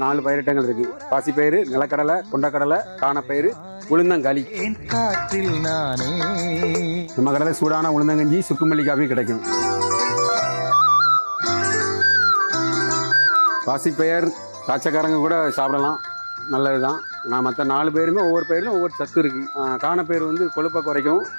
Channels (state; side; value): inverted; both; correlation -1.00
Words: 4 பயிரிட்டங்கள் இருக்கு. பாசிப்பயிறு, நிலக்கடலை, கொண்டக்கடலை, காணப்பயிறு, உளுந்தங்களி. காற்றில் நானே. நம்ம கடையில் சூடான உளுந்தங்கஞ்சி, சுக்குமல்லி காஃபி கிடைக்கும். பாசிப்பயிர் காய்ச்சக்காரங்க கூட சாப்பிடலாம், நல்லதுதான். நான் மற்ற 4 பேருமே ஒவ்வொரு பயிரிலும் ஒவ்வொரு சத்து இருக்கு. காணப்பயிர் வந்து கொழுப்பை குறைக்கும்,